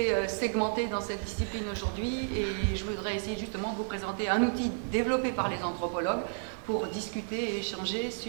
segmentées dans cette discipline aujourd'hui, et je voudrais essayer justement de vous présenter un outil développé par les anthropologues pour discuter et échanger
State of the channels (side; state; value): left; silent; 57 dB below the other